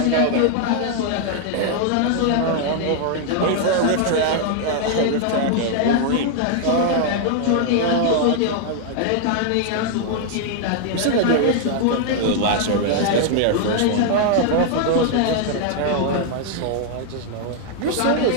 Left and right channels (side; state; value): both; different; correlation 0.00